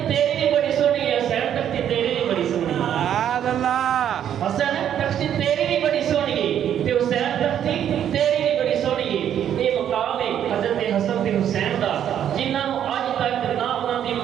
تیری بھی بڑی سونی ہے، حسین تختی تیری بھی بڑی سونی ہے، حسن تختی تیری بھی بڑی سونی ہے تے حسین تختی تیری بھی بڑی سونی ہے۔ یہ مقام ہے حضرت حسن تے حسین دا، جنہاں نوں اج تک نہ انہاں دی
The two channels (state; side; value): quieter; left; 9.8 dB